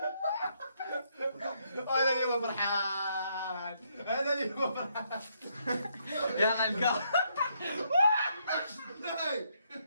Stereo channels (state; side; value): inverted; both; correlation -0.74